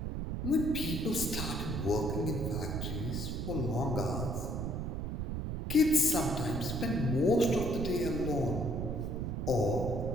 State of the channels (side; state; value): right; noise; rumble, 3 dB below the sound